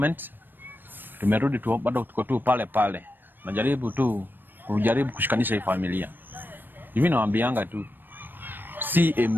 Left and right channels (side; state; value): left; late; 0.093 ms